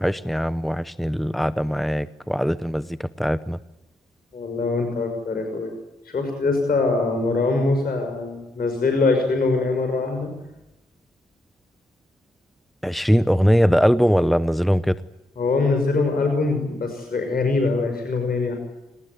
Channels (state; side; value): normal; both; correlation 0.82